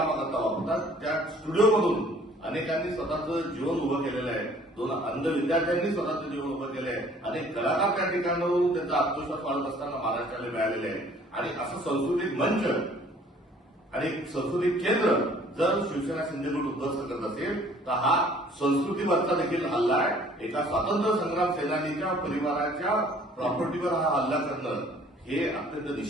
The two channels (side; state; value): both; normal; correlation 0.55